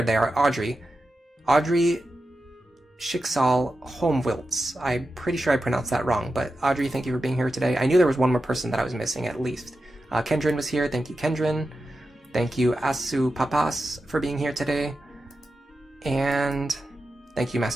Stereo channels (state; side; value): normal; both; correlation 0.91